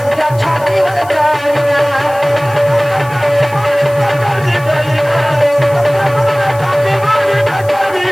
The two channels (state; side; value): noise; left; hiss, 22 dB below the sound